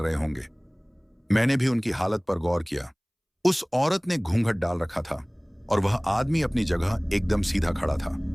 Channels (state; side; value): identical; both; correlation 1.00